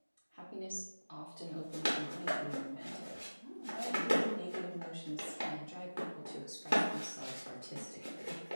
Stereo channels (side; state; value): both; inverted; correlation -1.00